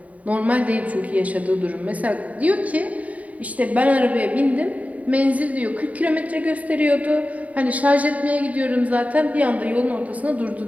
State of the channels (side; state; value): left; late; 0.070 ms